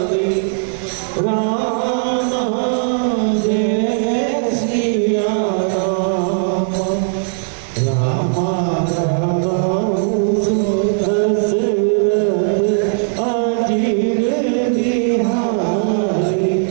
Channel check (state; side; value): silent; left; digital silence